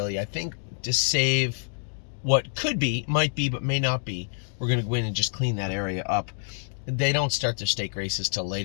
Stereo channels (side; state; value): right; silent; digital silence